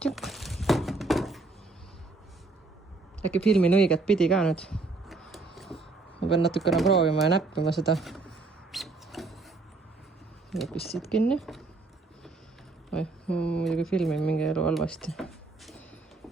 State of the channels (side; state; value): left; quieter; 3.6 dB